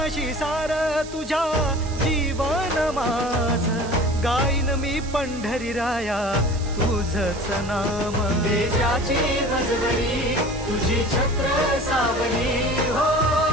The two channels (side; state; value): right; noise; hiss, 16 dB below the sound